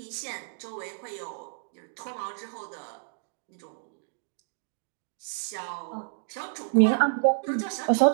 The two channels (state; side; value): silent; left; digital silence